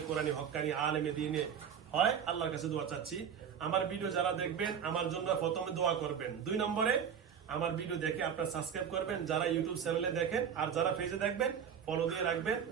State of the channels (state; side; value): quieter; left; 7.8 dB